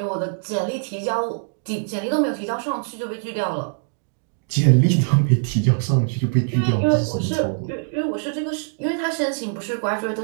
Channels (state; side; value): silent; left; digital silence